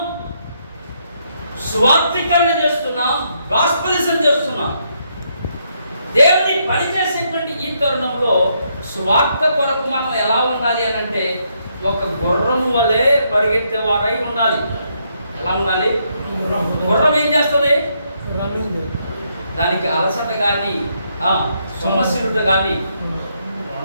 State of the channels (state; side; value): inverted; both; correlation -0.75